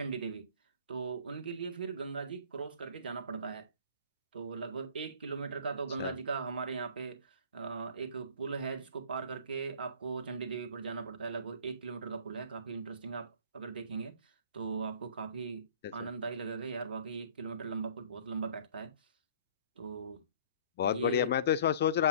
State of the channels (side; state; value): both; inverted; correlation -0.50